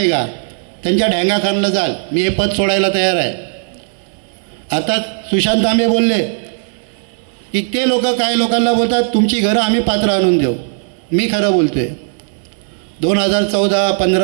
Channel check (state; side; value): silent; left; 67 dB below the other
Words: त्यांच्या ढँगाखानला जाल. मी हे पद सोडायला तयार आहे. आता सुशांत तांबे बोलले की ते लोक काय लोकांना बोलतात तुमची घरं आम्ही पात्र आणून देऊ. मी खरं बोलतोय, 2014,